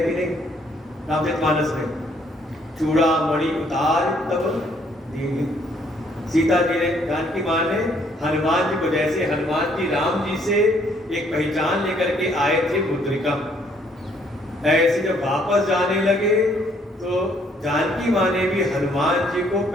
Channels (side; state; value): both; normal; correlation 0.66